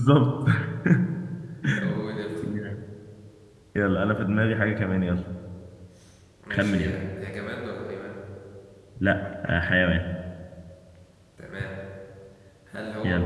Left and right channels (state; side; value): identical; both; correlation 1.00